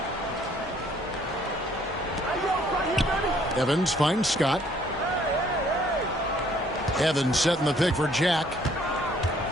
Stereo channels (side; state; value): both; normal; correlation 0.62